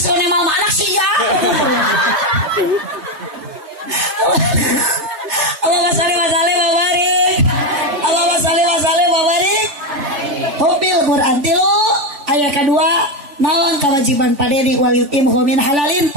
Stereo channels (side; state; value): left; late; 3.3 ms